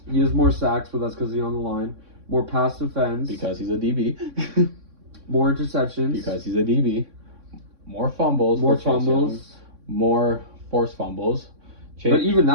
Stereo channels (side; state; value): left; late; 3.6 ms